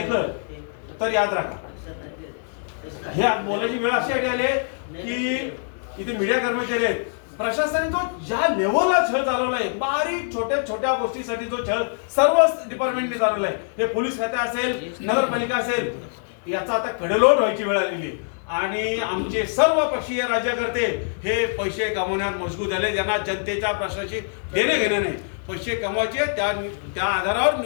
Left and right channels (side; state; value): right; silent; 63 dB below the other